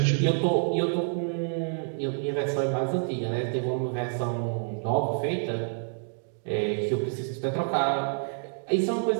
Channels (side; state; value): left; silent; digital silence